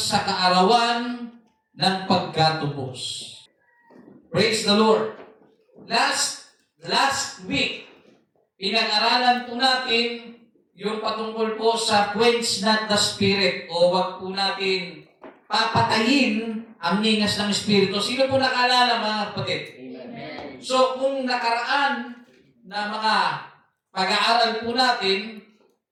kaarawan ng pagkatubos. Praise the Lord. Last week, pinag-aralan po natin yung patungkol po sa quench not the spirit o wag po natin papatayin ang ningas ng Espiritu. Sino po nakaalala, mga kapatid? So, kung nakaraan na mga pag-aaral po natin,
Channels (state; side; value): identical; both; correlation 1.00